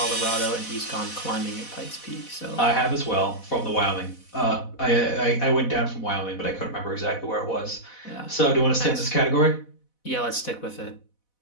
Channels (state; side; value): late; right; 4.1 ms